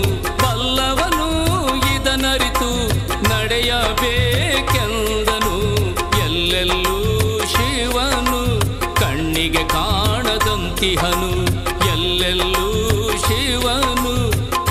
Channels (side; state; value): both; identical; correlation 1.00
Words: ಬಲ್ಲವನು ಇದನರಿತು ನಡೆಯಬೇಕೆಂದನು. ಎಲ್ಲೆಲ್ಲೂ ಶಿವನು ಕಣ್ಣಿಗೆ ಕಾಣದಂತಿಹನು, ಎಲ್ಲೆಲ್ಲೂ ಶಿವನು